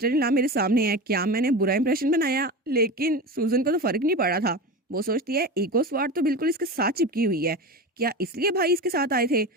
इन लॉ मेरे सामने है, क्या मैंने बुरा इंप्रेशन बनाया। लेकिन सूजन को तो फर्क नहीं पड़ा था, वो सोचती है ईगो स्वार्थ तो बिल्कुल इसके साथ चिपकी हुई है, क्या इसलिए भाई इसके साथ आए थे।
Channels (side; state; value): both; normal; correlation 0.26